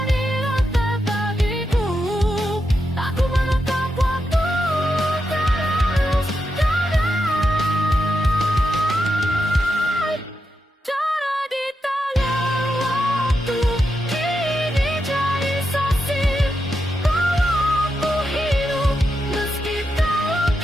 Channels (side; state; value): both; normal; correlation 0.86